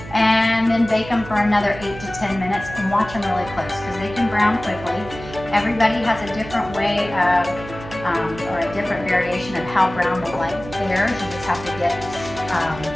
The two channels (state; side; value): noise; right; hum, 14 dB below the sound